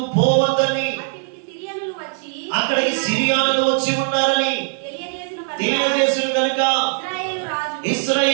పోవద్దని, అక్కడికి సిరియానులు వచ్చి ఉన్నారని తెలియజేసిన కనుక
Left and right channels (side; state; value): left; silent; digital silence